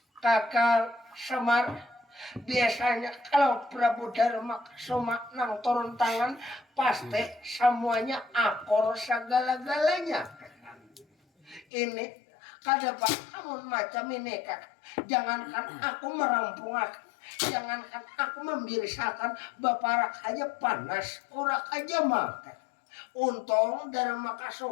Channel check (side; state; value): right; drops out; at 11.7 s